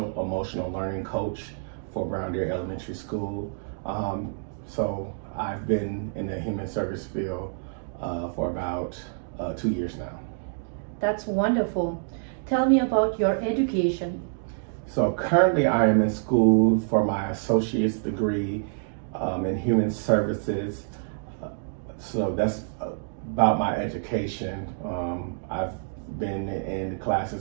emotional learning coach for Brown Deer Elementary School. So I've been in the human service field for about 2 years now. That's wonderful. Tell me about your education. So currently I am in school for my associate's degree in human services. So that's about my education. I've been in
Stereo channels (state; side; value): silent; left; digital silence